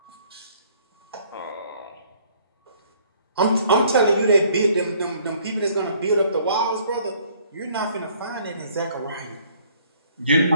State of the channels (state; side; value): inverted; both; correlation -0.60